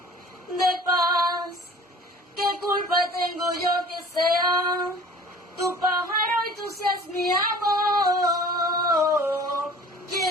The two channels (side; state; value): both; normal; correlation 0.46